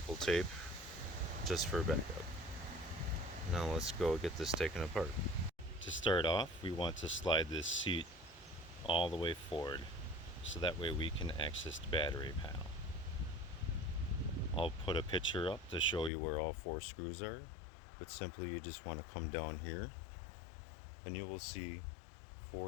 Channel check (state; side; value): drops out; right; at 16.1 s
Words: tape just for backup. Now let's go get this taken apart. To start off, we want to slide this seat all the way forward so that way we can access the battery panel. I'll put a picture up to show you where all 4 screws are, but simply you just want to come down here and you will see